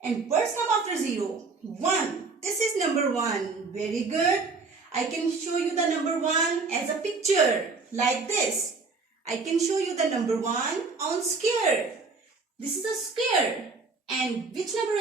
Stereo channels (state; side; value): quieter; left; 4.2 dB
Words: And words come after 0. 1. This is number 1. Very good. I can show you the number 1 as a picture like this. I can show you the number 1 on square. This is a square. And which number